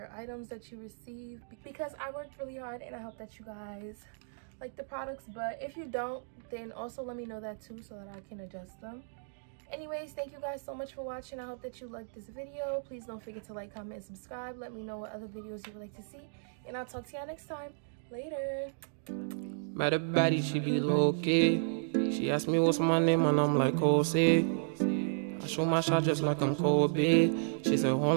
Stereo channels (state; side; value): silent; left; digital silence